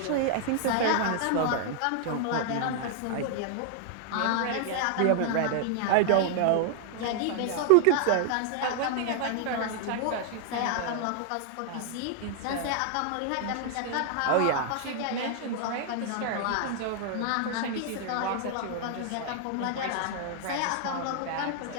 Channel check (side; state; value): both; different; correlation 0.00